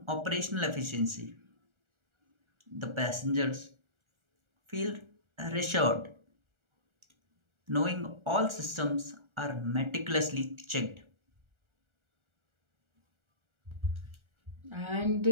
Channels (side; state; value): left; late; 1.4 ms